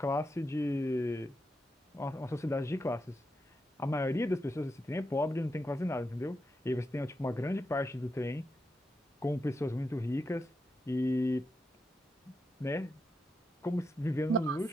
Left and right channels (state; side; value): normal; both; correlation 0.86